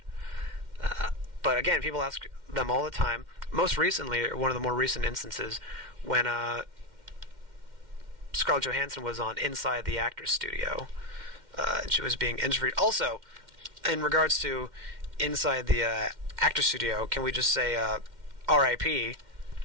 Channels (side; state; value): left; late; 2.1 ms